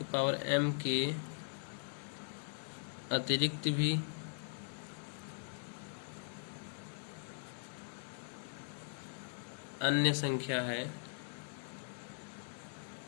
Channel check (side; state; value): right; silent; digital silence